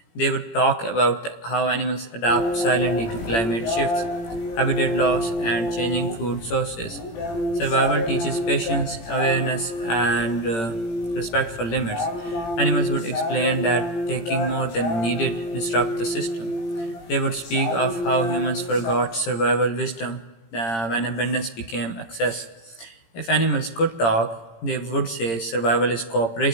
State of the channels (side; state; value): right; late; 18 ms